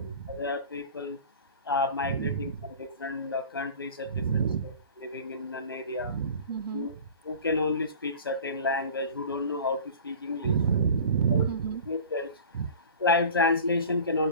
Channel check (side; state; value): both; inverted; correlation -0.40